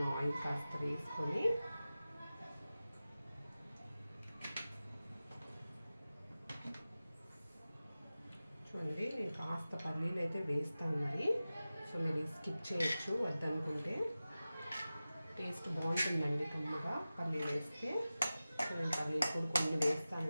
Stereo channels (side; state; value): both; inverted; correlation -0.95